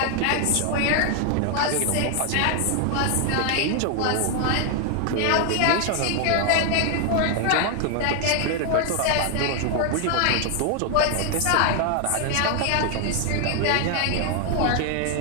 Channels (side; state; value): both; different; correlation 0.00